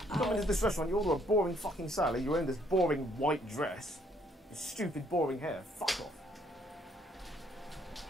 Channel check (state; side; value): normal; both; correlation 0.67